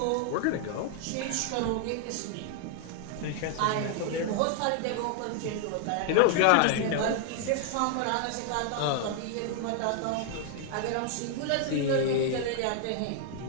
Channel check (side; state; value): both; different; correlation 0.00